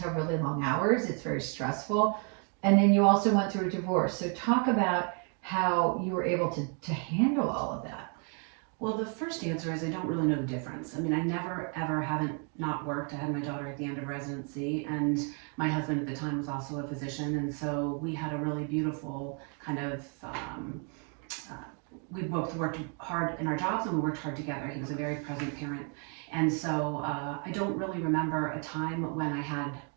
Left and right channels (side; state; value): left; quieter; 39.9 dB